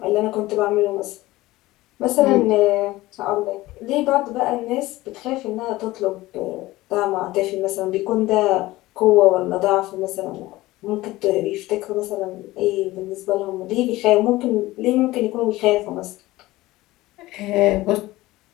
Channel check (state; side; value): quieter; right; 18.2 dB